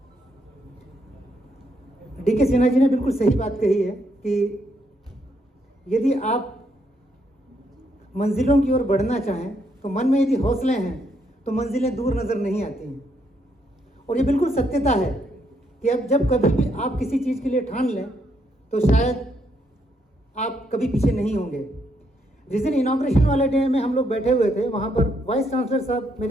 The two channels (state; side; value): normal; both; correlation 0.75